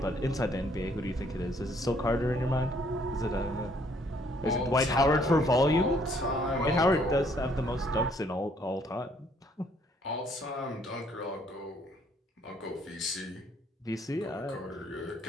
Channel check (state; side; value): normal; both; correlation 0.65